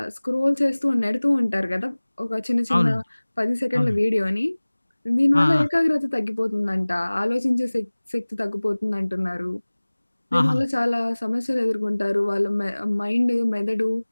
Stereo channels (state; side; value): inverted; both; correlation -1.00